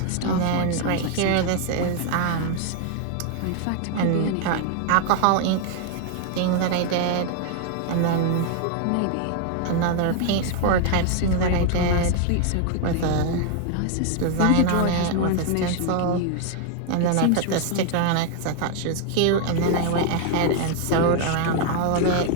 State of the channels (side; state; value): both; different; correlation 0.00